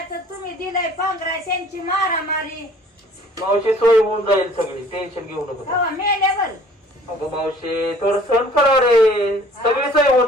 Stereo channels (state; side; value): normal; both; correlation 0.53